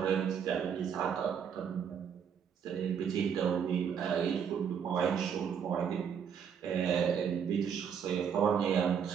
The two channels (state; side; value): quieter; left; 7.5 dB